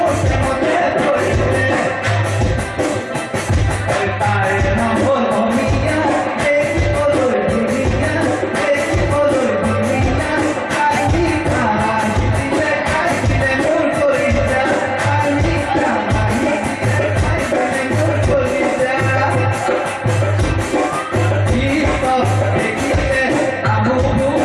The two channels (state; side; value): identical; both; correlation 1.00